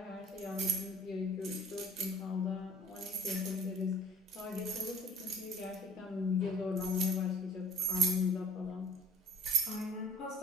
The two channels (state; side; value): normal; both; correlation 0.49